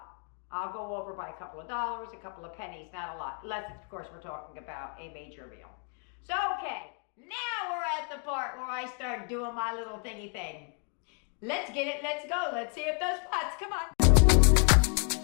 I'll go over by a couple of dollars, a couple of pennies, not a lot. Unless, of course, we're talking about a major meal. So, okay. Now we're at the part where I start doing my little thingy thing. Let's get it. Let's go. Let's see if those pots. Come on.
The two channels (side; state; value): right; quieter; 38.7 dB